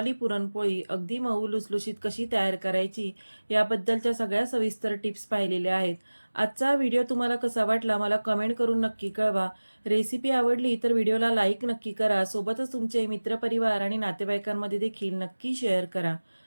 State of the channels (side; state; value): both; inverted; correlation -1.00